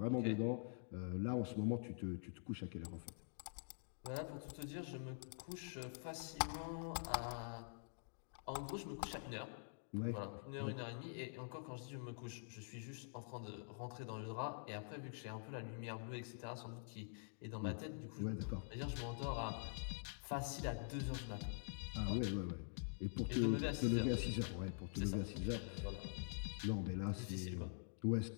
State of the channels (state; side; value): silent; right; digital silence